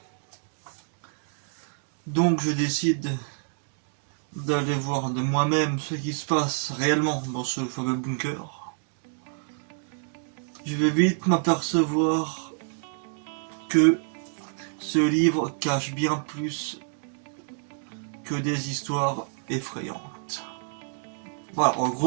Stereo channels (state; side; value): silent; left; 60 dB below the other